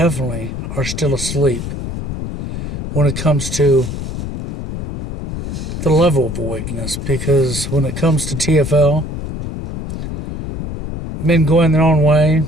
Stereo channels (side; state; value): left; noise; rumble, 6 dB below the sound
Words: are still asleep when it comes to the level of awakeness. Because when it comes to TFL, men going their own way,